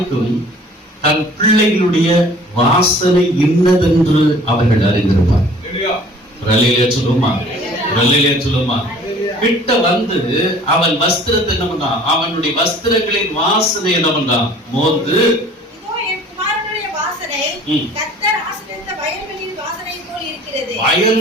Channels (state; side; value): normal; both; correlation 0.50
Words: தன் பிள்ளைகளுடைய வாசனை இன்னதென்று அவர்கள் அறிந்திருப்பார். சொல்லுமா? கிட்ட வந்து அவன் வஸ்திரத்தை என்ன பண்ணான்? அவனுடைய வஸ்திரங்களின் வாசனை என்ன பண்ணான்? மோந்து,